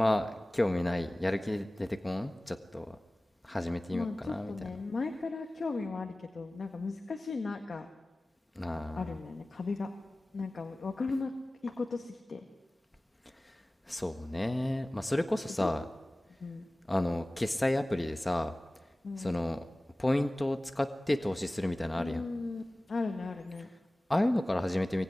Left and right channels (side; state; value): both; normal; correlation 0.98